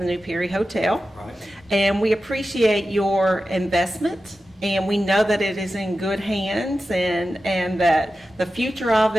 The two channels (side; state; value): both; normal; correlation 0.93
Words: new Perry Hotel. Right. And we appreciate your investment, and we know that it is in good hands, and that the future of